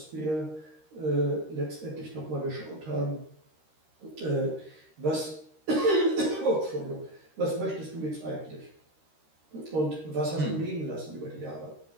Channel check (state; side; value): late; left; 13 ms